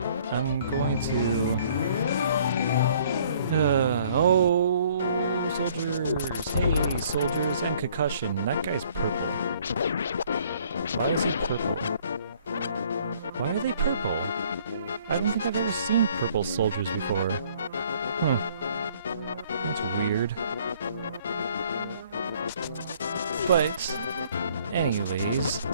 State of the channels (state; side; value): inverted; both; correlation -0.59